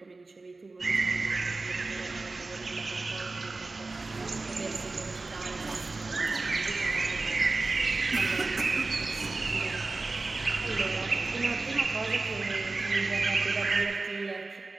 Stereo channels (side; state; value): left; quieter; 3.5 dB